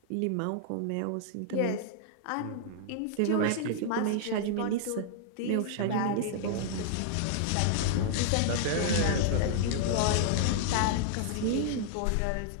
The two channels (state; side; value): different; both; correlation -0.01